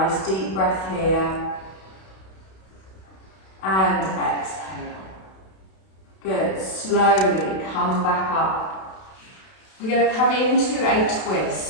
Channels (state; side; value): late; right; 32 ms